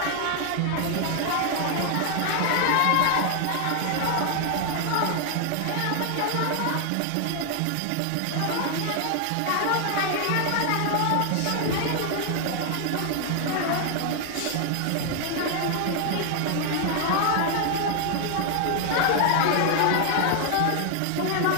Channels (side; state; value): both; different; correlation 0.00